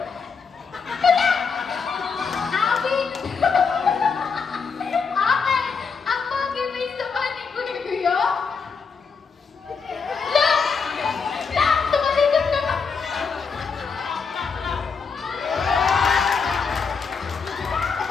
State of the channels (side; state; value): right; quieter; 5.4 dB